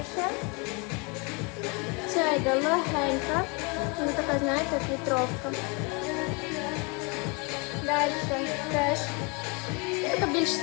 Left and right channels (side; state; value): right; quieter; 31.1 dB